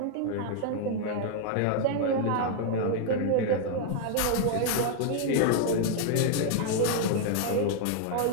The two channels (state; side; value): different; both; correlation 0.00